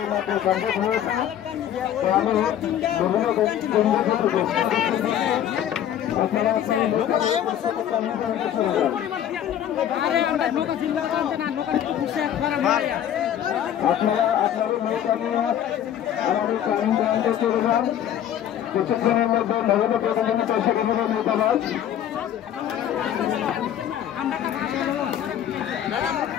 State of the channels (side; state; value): right; quieter; 10.5 dB